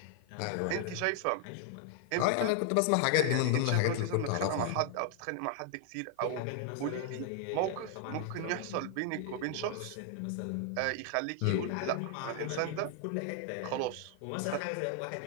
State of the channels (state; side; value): different; both; correlation 0.00